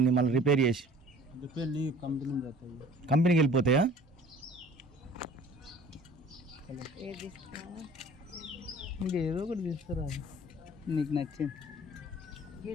మళ్ళీ రిపేర్ చేసి? కంపెనీకి వెళ్ళిపోతాయా? ఇంకేదో ఒకటి తీస్తారా నీకు నచ్చింది.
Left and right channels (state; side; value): normal; both; correlation 0.49